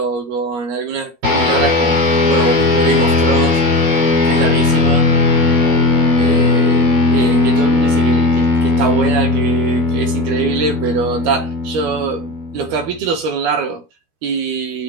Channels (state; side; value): late; left; 13 ms